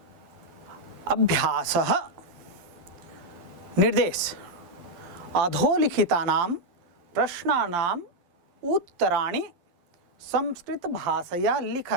अभ्यासः निर्देश अधोलिखितानां प्रश्नानां उत्तराणि संस्कृत भाषया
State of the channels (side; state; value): left; late; 12 ms